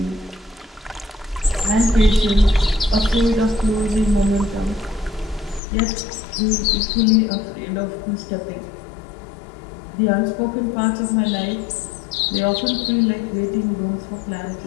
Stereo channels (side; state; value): right; drops out; at 5.6 s